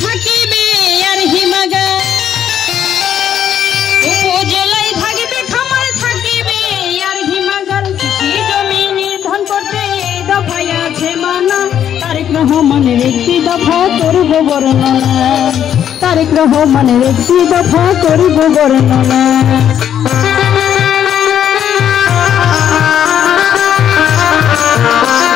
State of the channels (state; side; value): quieter; right; 9.7 dB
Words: থাকিবে আর হিমাগার। উপজেলায় থাকবে খামার, থাকিবে আর হিমাগার। কৃষি জমি নির্ধারণ করতে এই দফায় আছে মানা, তারেক রহমানের ৩১ দফা করব বর্ণনা। তারেক রহমানের ৩১ দফা করব বর্ণনা।